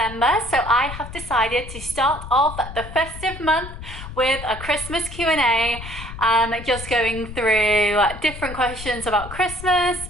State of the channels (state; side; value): noise; left; rumble, 11 dB below the sound